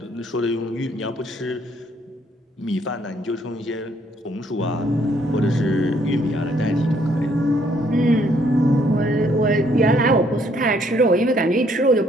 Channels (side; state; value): both; normal; correlation 0.67